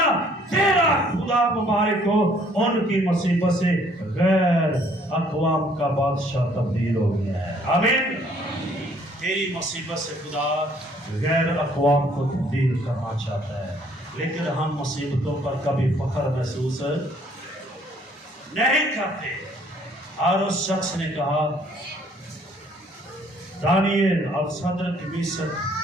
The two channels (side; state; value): both; normal; correlation 0.62